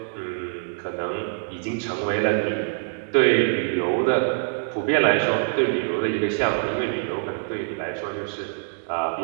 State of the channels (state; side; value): silent; left; digital silence